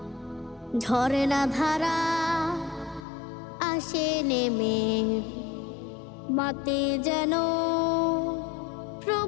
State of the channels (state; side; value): drops out; right; at 3.1 s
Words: ঝরনা ধারা আসে নেমে, মাতে যেন